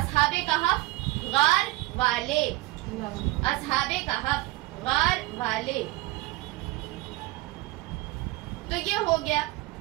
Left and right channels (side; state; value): left; quieter; 20.1 dB